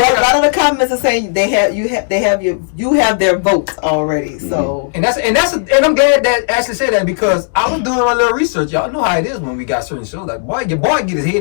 a lot of the comments are saying you have their votes already. So And I'm glad that Ashley said that, because I was doing my little research. Y'all know how it is when we got certain shows. Like, boy, your boy get his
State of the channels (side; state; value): right; silent; digital silence